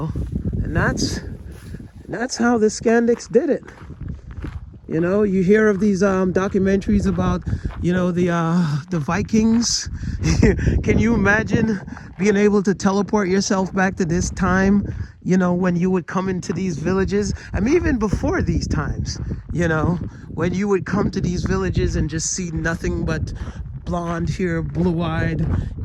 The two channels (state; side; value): identical; both; correlation 1.00